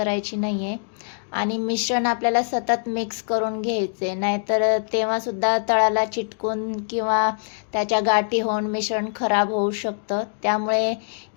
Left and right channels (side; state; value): right; silent; digital silence